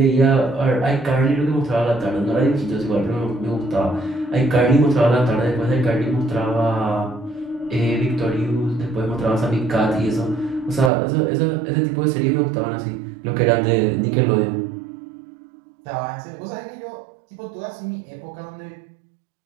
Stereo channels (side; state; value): left; drops out; at 10.9 s